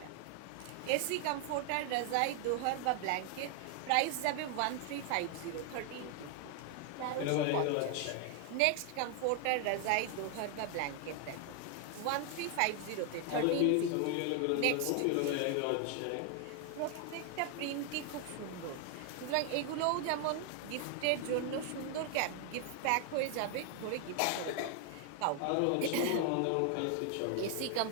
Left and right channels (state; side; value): different; both; correlation 0.00